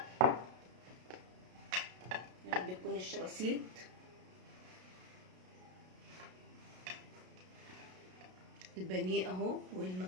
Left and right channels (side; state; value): left; late; 33 ms